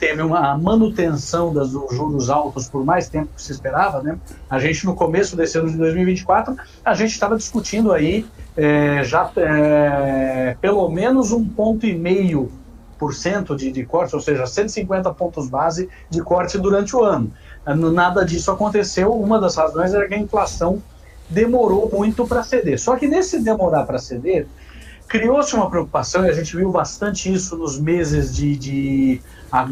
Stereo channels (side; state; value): both; identical; correlation 1.00